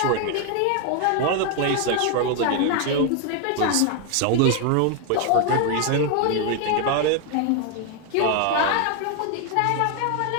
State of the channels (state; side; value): different; both; correlation 0.01